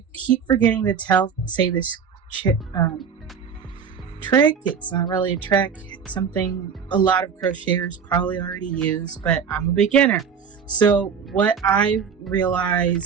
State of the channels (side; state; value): left; quieter; 6.7 dB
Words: keep forgetting to say this trick. It's not really a trick. It's something a lot of crocheters probably already use, but I'm a beginner. So what I've